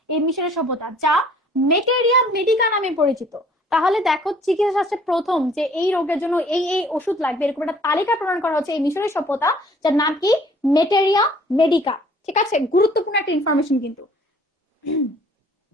এই মিশরের সভ্যতা, যা মেটেরিয়া মেডিকা নামে পরিচিত। তাহলে দেখো, চিকিৎসা শাস্ত্রে প্রথম যে এই রোগের জন্য এই এই ওষুধ লাগবে এরকম একটা তালিকা প্রণয়ন করা হচ্ছে এই মিশরের সভ্যতা, যার নাম কি? মেটেরিয়া মেডিকা, ঠিক আছে? গুরুত্বপূর্ণ একটা ইনফরমেশন কিন্তু।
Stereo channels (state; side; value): normal; both; correlation 0.56